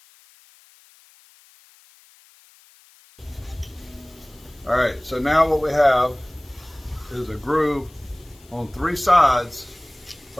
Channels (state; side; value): noise; left; hiss, 27 dB below the sound